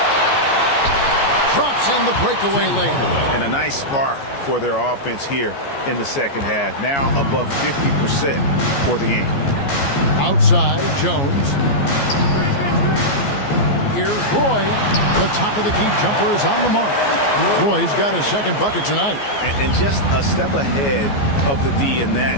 Drops in the breakaway layup. And a nice spark for their offense here in the second half. Now above 50% for the game. Outside, Jones. Here's Roy. The top of the key jumper is on the mark. Roy's got his 2nd bucket tonight. And just a step ahead of the D in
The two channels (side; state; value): right; late; 14 ms